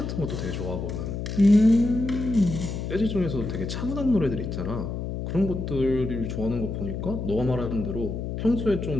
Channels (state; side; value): noise; left; hum, 4 dB below the sound